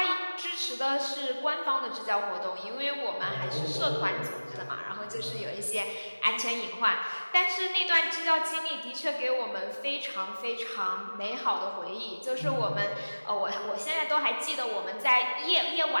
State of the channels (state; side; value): inverted; both; correlation -1.00